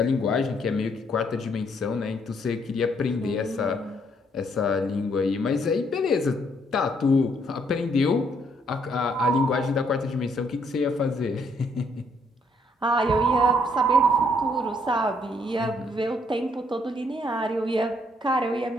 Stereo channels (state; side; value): normal; both; correlation 0.69